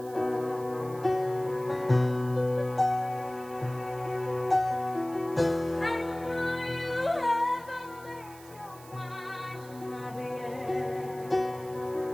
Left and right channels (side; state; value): right; noise; hiss, 21 dB below the sound